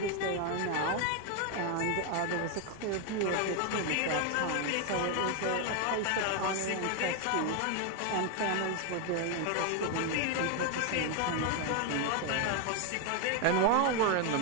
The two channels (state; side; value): different; both; correlation 0.01